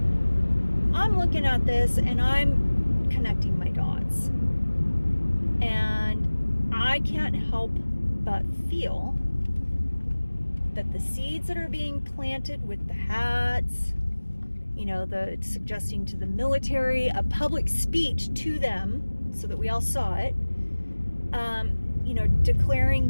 I'm looking at this and I'm connecting my dots. And I can't help but feel that the seeds that are being planted with the hats, the suggesting to the military, a public speech to them so that we all saw it, declaring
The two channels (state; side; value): inverted; both; correlation -1.00